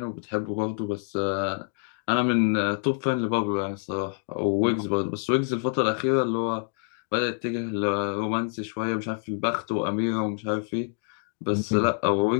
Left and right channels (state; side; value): silent; right; 57 dB below the other